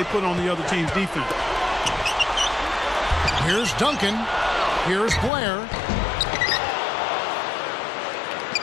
put on the other team's defense. Here's Duncan. Here's Blair.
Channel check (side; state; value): right; drops out; at 5.3 s